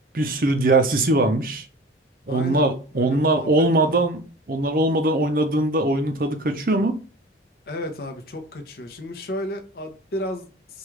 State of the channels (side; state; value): both; normal; correlation 0.39